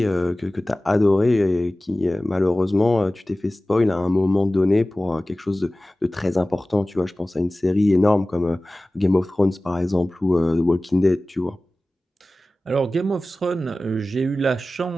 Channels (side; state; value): both; normal; correlation 0.97